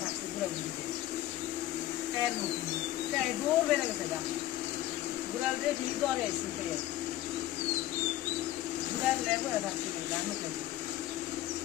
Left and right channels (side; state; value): right; quieter; 14.2 dB